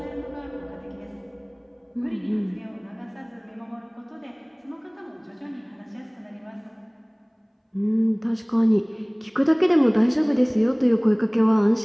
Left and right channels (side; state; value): both; identical; correlation 1.00